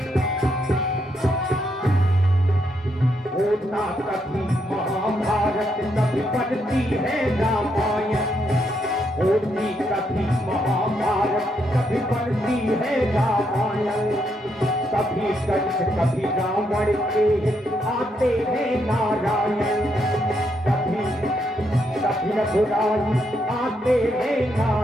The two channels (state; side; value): normal; both; correlation 0.77